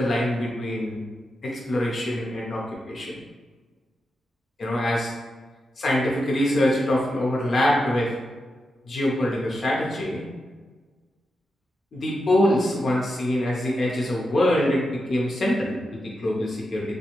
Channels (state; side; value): normal; both; correlation 0.88